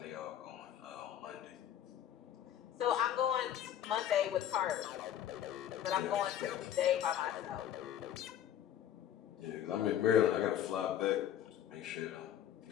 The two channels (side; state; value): right; quieter; 10.5 dB